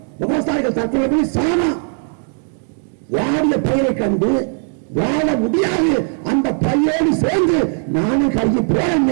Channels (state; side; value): silent; left; 56 dB below the other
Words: விவசாயிகள் தற்கொலை பண்ணி சாமா. வாடிய பயிரை கண்டு வாழ முடியாது, அந்த பையோடு சேர்ந்து நானும் கருகி